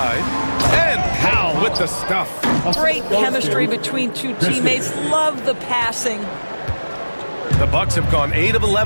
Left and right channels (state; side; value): inverted; both; correlation -1.00